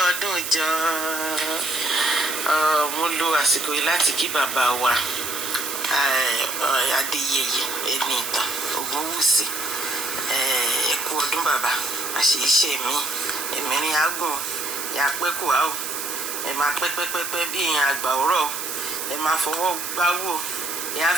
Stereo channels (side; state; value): right; noise; hiss, 5 dB below the sound